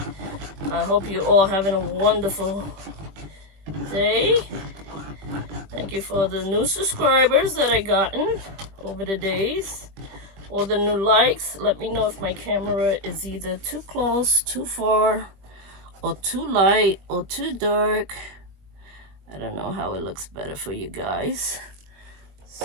I hope you all having a wonderful day. Thank you for the new subscribers that I gotten over the days. All the new likes. Let me know if my camera is either too close, too far, or too light, or too dark. I don't know how it looks better for you guys.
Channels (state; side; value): late; left; 20 ms